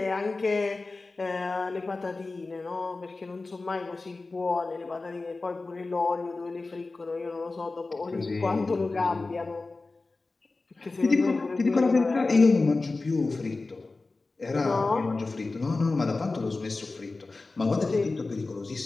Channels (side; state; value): right; quieter; 3.5 dB